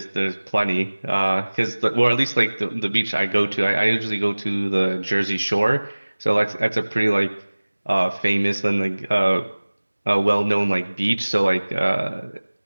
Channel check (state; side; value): inverted; both; correlation -1.00